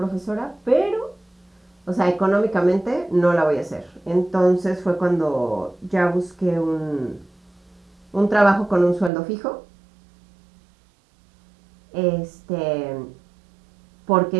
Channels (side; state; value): left; drops out; at 9.1 s